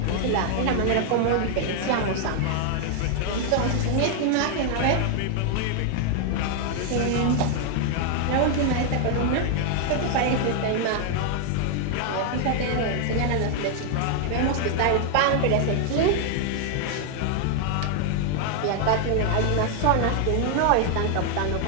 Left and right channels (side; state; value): both; different; correlation 0.00